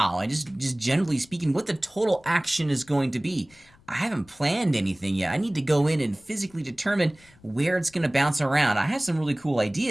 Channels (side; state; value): left; noise; rumble, 29 dB below the sound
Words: and just generally speaking, what the total action is going to be. I haven't planned anything yet. I need to go in and physically determine where it's going to bounce around. I have some really cool